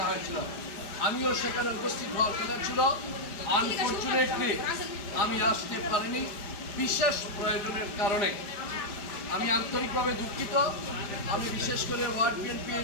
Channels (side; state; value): right; late; 5.0 ms